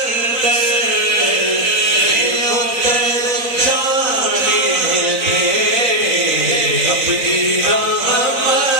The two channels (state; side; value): late; left; 4.0 ms